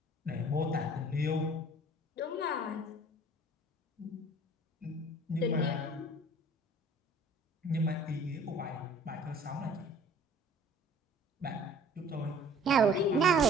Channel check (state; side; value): normal; both; correlation 0.51